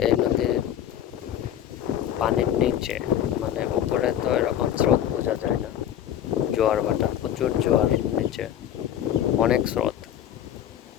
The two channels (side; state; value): right; quieter; 10.6 dB